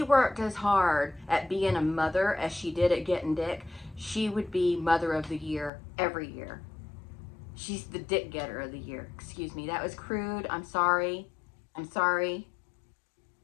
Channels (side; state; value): right; drops out; at 5.7 s